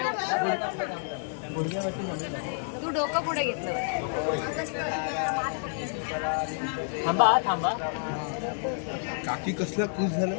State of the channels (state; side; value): silent; right; digital silence